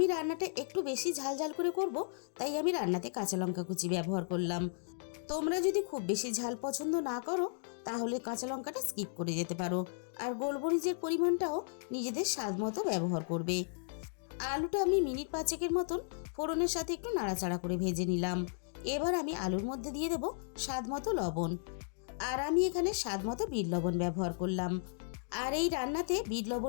রান্নাটা একটু বেশি ঝাল ঝাল করে করব, তাই আমি রান্নাতে কাঁচা লঙ্কা কুচি ব্যবহার করলাম। তোমরা যদি খুব বেশি ঝাল পছন্দ না করো তাহলে কাঁচা লঙ্কাটা স্কিপ করে যেতে পারো। আর গোলমরিচের পরিমাণটাও নিজেদের স্বাদ মতো ব্যবহার করবে। আলুটা আমি মিনিট 5 মতন ফোড়নের সাথে একটু নাড়াচাড়া করে ভেজে নিলাম। এবার আমি আলুর মধ্যে দিয়ে দেব স্বাদ মতো লবণ। আর আমি এখানে স্বাদ মতো বিট লবণ ব্যবহার করলাম। আর এই রান্নাতে বিট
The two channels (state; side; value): silent; right; digital silence